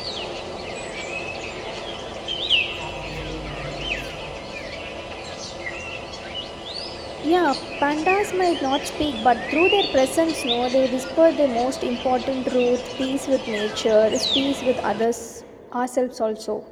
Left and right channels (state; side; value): identical; both; correlation 1.00